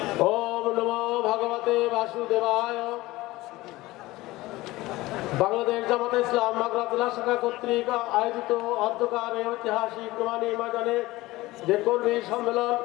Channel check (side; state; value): right; quieter; 19.0 dB